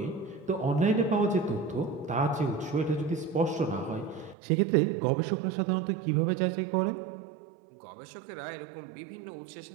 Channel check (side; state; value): left; drops out; at 4.4 s